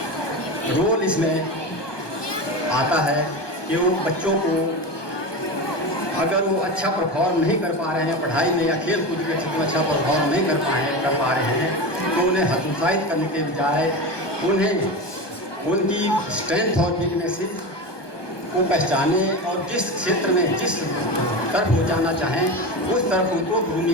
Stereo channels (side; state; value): right; late; 1.2 ms